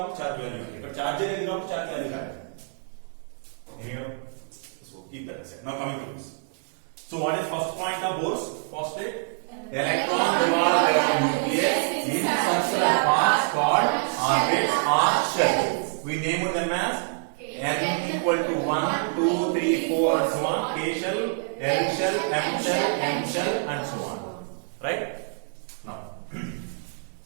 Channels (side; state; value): left; silent; 61 dB below the other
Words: చార్జ్ వాల్యూ ఎంత? ఇక్కడ చార్జ్ అనేది కాబట్టి చార్జ్ వాల్యూ కాదు. So keep that aside. Now coming to this. So what is first point of Bohr's postulate? Electron revolve around nucleus in circular paths called orbits or shells. We name them as n equal to 1, 2, 3, 4 and so on. K shell, L shell, M shell, N shell and so on. Right? Now.